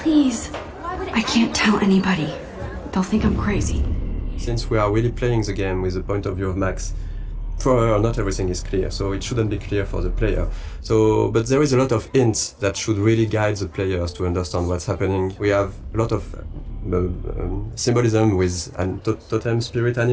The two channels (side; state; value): both; identical; correlation 1.00